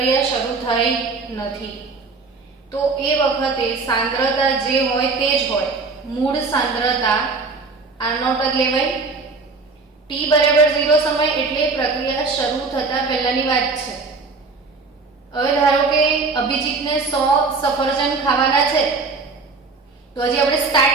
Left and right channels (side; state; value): left; quieter; 4.1 dB